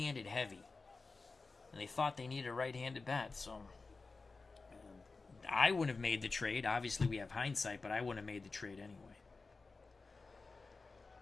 heavy. And they thought they needed a right-handed bat, so I wouldn't have made the trade. Obviously, we have hindsight, but I wouldn't have made the trade anyway.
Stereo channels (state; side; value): quieter; right; 4.0 dB